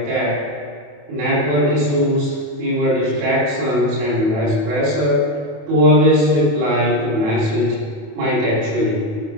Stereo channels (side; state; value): left; late; 27 ms